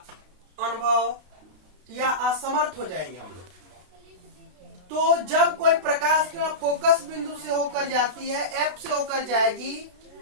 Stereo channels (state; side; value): late; left; 32 ms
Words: अनुभव या असमर्थ हो जाएंगे हम लोग। तो जब कोई प्रकाश किरण फोकस बिंदु से होकर जाती है, एफ से होकर जाएगी,